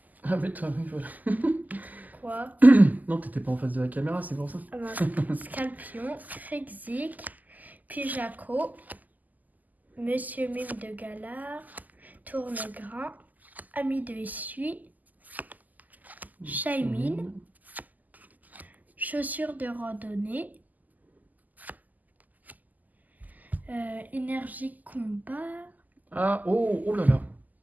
Ah mais toi, oui, voilà. Quoi? Non, t'étais pas en face de la caméra, c'est pour ça. Scalpion, Krixik, Pijaco, Monsieur Mime de Galard, Tournegrain, Ami de Essuie, Shaimine, Chaussures de randonnée, Énergie combat. Ah, oh là là.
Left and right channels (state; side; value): late; left; 0.081 ms